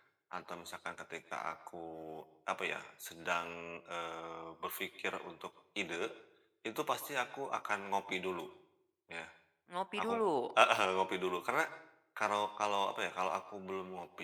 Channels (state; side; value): identical; both; correlation 1.00